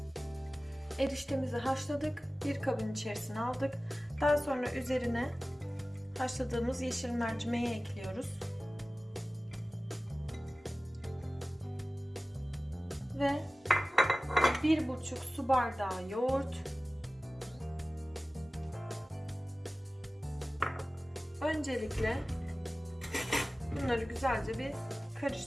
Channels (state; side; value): normal; both; correlation 0.96